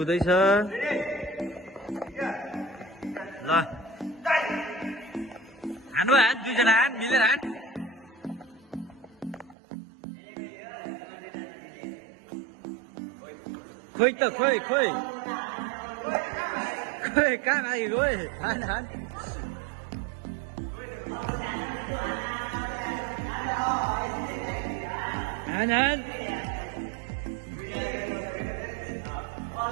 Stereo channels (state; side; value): drops out; left; at 9.6 s